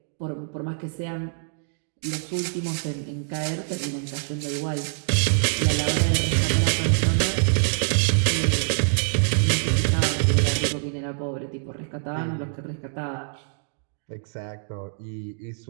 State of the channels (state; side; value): silent; left; digital silence